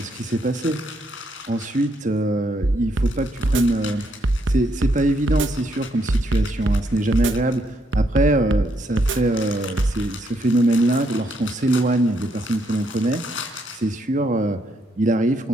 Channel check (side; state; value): both; normal; correlation 0.75